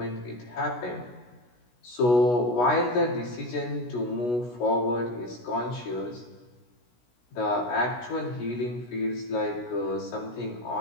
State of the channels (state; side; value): late; right; 16 ms